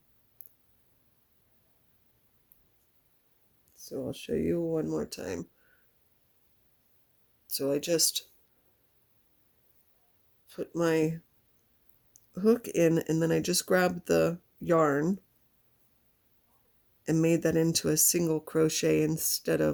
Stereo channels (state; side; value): identical; both; correlation 1.00